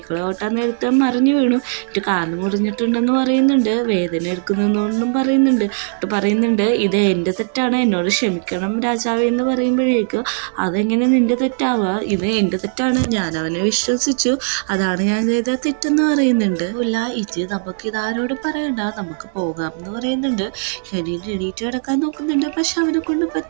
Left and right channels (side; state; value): left; silent; digital silence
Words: ഓട്ടാൻ നേരത്തെ മറിഞ്ഞു വീണു, എന്നിട്ട് കാല് മുറിഞ്ഞിട്ടുണ്ടെന്ന് പറയുന്നുണ്ട്. വേദന എടുക്കുന്നൊന്നും പറയുന്നുണ്ട് ഇത് എൻ്റെ തെറ്റാണ്, എന്നോട് ക്ഷമിക്കണം രാജാവേ എന്ന് പറയുമ്പോഴേക്കും അതെങ്ങനെ നിൻ്റെ തെറ്റാവുക, ഇത് എൻ്റെ തെറ്റാണ്, ഞാൻ അവനെ വിശ്വസിച്ചു, അതാണ് ഞാൻ ചെയ്ത തെറ്റെന്ന് പറയുന്നുണ്ട്. ഇല്ല ഇത് നമുക്ക് ഇതാരോട് പറയണ്ട, നമുക്ക് പോകാം എന്ന് പറയുന്നുണ്ട്. കെനിൻ എണീറ്റ് കിടക്കാൻ നോക്കുന്നുണ്ട്. പക്ഷെ അവനെ കൊണ്ട്